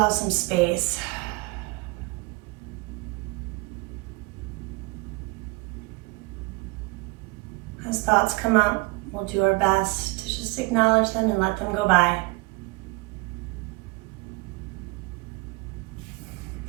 some space. As thoughts come up, we'll do our best to just acknowledge them and let them go by.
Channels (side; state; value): left; quieter; 26.1 dB